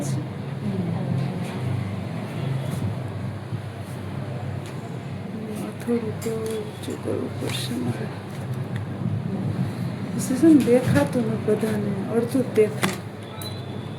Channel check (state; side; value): identical; both; correlation 1.00